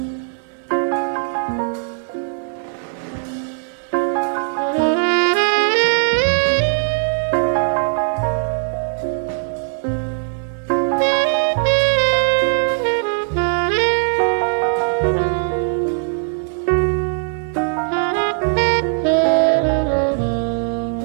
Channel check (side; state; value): left; silent; 56 dB below the other